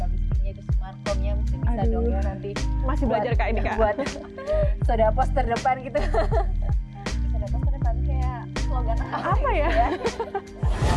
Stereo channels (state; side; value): identical; both; correlation 1.00